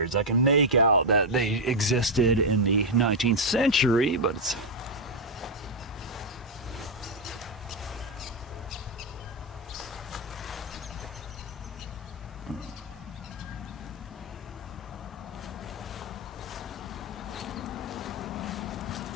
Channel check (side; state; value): both; normal; correlation 0.00